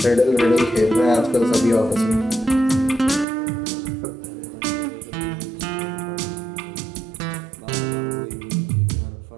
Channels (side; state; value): left; drops out; at 3.2 s